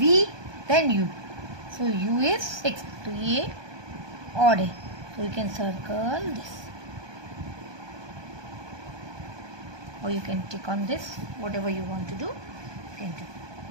then U. So U is 6. तो ये odd है. So you can circle this. Or you can tick on this. Whatever you want to do, you can do.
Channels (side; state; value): left; late; 1.2 ms